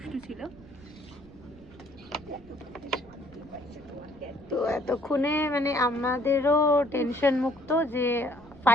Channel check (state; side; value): noise; right; rumble, 23 dB below the sound